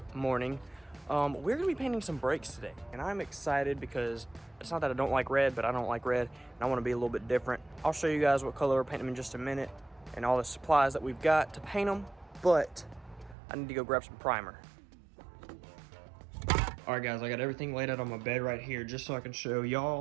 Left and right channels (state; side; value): drops out; left; at 13.4 s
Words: morning. We're gonna be painting some brakes today, and I'm excited because it's not that I don't like red, but I don't like red, and I wanna be a little bit different. I'll show you guys what color we're painting them in just a minute, and all the supplies that we've got to paint them, but I need to go grab some primer. All right, guys, I got everything laid out on my bed right here, just so I can show